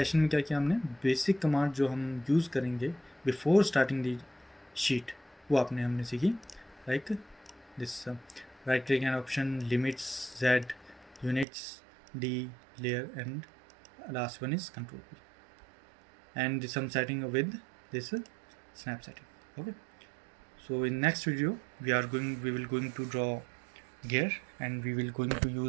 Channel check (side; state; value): left; drops out; at 11.5 s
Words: में क्या किया हमने, बेसिक कमांड जो हम यूज़ करेंगे बिफोर स्टार्टिंग दी शीट वो हमने सीखी, like this right click and option, limits, Z, units, D, layer, and last one is control P, and some setting with this snap setting. Okay, so in next video we will going to draw gear, and we will going to